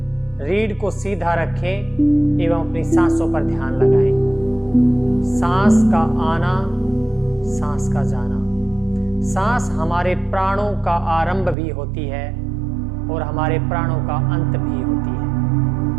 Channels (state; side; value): drops out; left; at 11.6 s